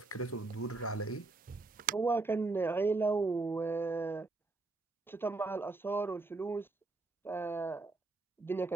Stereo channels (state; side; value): quieter; left; 3.4 dB